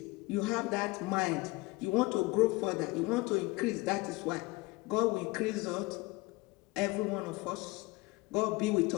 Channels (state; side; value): quieter; right; 23.0 dB